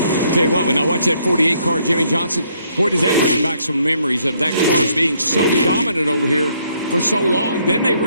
Tell you what, when I watch that 48 car, Jimmy Johnson, boy, does that bring back some memories of that car being so dominant over here for so long. Then they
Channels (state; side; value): inverted; both; correlation -0.70